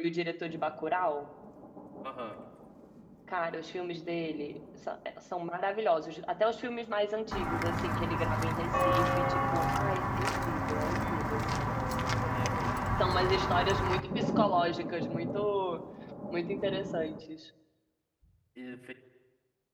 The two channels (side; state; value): both; identical; correlation 1.00